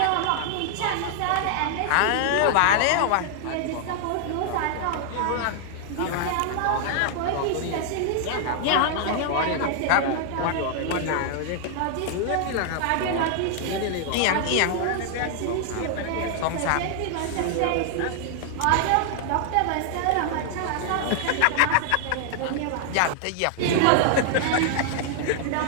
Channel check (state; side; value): different; both; correlation 0.00